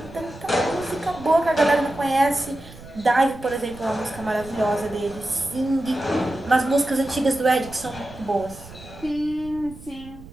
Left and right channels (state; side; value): noise; right; rumble, 18 dB below the sound